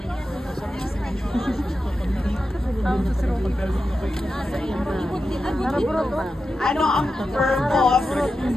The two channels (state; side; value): normal; both; correlation 0.91